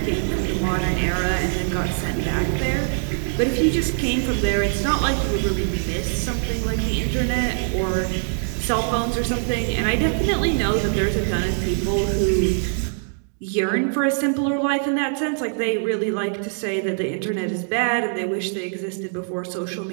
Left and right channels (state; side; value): silent; left; digital silence